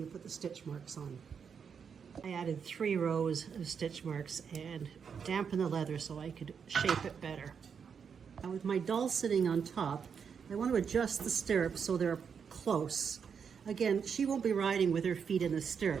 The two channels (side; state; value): left; quieter; 6.7 dB